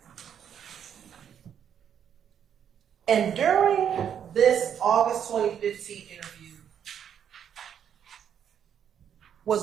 And during this August 2015 interview,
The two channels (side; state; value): left; quieter; 8.7 dB